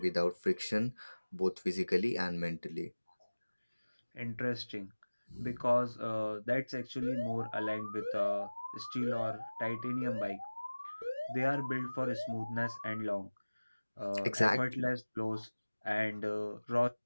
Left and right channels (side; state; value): both; inverted; correlation -1.00